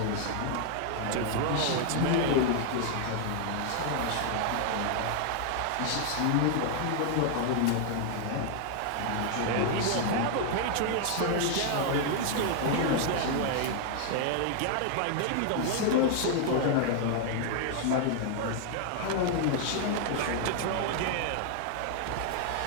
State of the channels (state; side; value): different; both; correlation 0.00